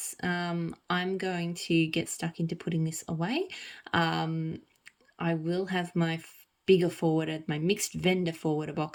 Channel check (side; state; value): both; identical; correlation 1.00